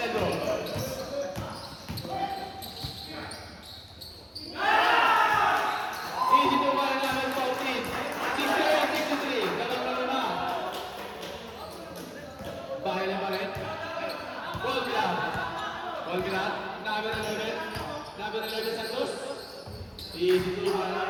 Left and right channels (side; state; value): both; identical; correlation 1.00